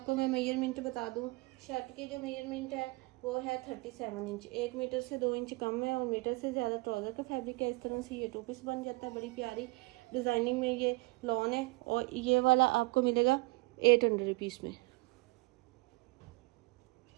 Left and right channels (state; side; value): quieter; left; 24.6 dB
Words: मैं मेजरमेंट बता दूं, शर्ट की जो मेजरमेंट है वो है 37 इंच, 1 मीटर से 2 इंच कम है और मीटर से ज़्यादा ट्राउज़र का फैब्रिक है। इस तरह से ये 2 पीस बन जाता है, बड़ी प्यारी डिज़ाइनिंग में ये लॉन है और ये वाला आपको मिलेगा 800 रुपीज़ में।